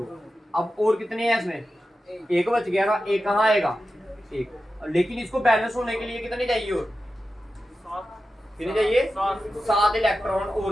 अब और कितने हैं इसमें, 1 बच गया ना, 1 कहाँ आएगा, 1। लेकिन इसको बैलेंस होने के लिए कितने चाहिए, और कितने चाहिए? 7 इलेक्ट्रॉन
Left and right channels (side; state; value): both; normal; correlation 0.92